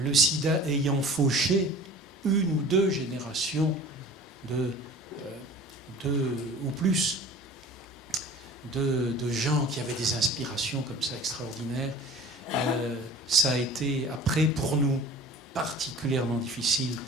sida ayant fauché une ou deux générations ou plus de gens qui avaient des inspirations comme ça extraordinaires, ça a été après pour nous particulièrement difficile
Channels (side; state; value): both; normal; correlation 0.43